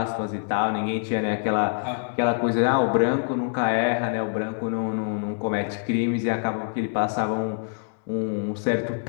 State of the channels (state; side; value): silent; right; digital silence